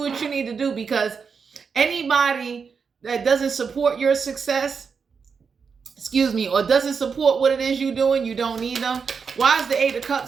what you need to do, because anybody that doesn't support your success, or doesn't support what it is you're doing, you don't need them. Why is the 8 of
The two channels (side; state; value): left; quieter; 5.8 dB